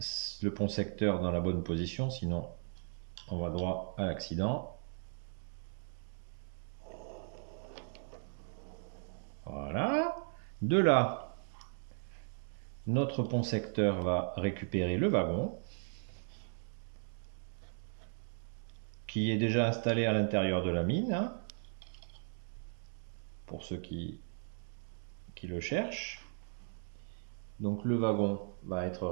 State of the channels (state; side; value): silent; left; digital silence